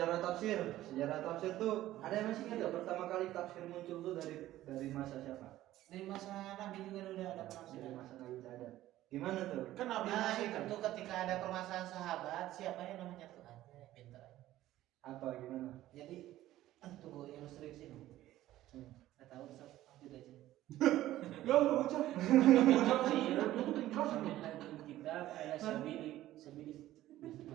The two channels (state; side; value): quieter; left; 14.6 dB